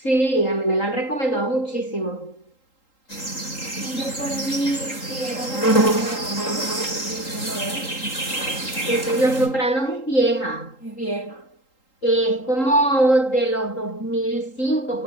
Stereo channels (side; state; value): right; late; 3.8 ms